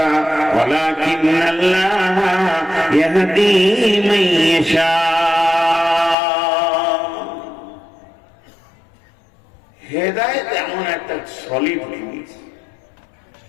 ওয়ালাকিন্নাল্লাহা ইয়াহদি মান ইয়াশা। হেদায়েত এমন একটা সলিড জিনিস।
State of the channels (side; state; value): right; drops out; at 6.2 s